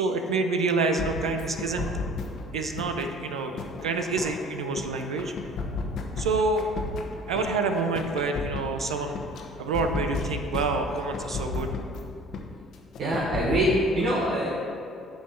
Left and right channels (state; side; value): normal; both; correlation 0.46